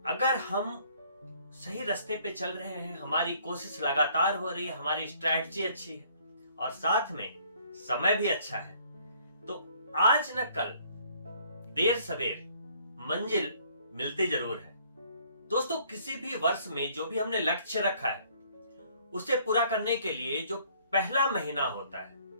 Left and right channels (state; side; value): inverted; both; correlation -0.61